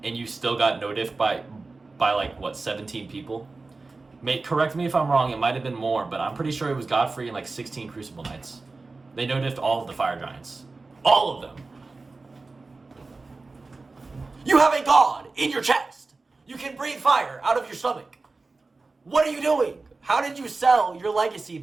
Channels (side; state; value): left; quieter; 3.7 dB